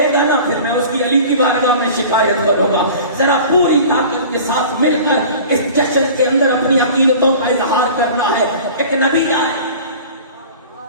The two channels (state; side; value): inverted; both; correlation -0.41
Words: گا نا پھر میں اس کی علی کی بارگاہ میں شکایت کروں گا۔ ذرا پوری طاقت کے ساتھ مل کر اس جشن کے اندر اپنی عقیدتوں کا اظہار کرنا ہے۔ ایک نبی آئے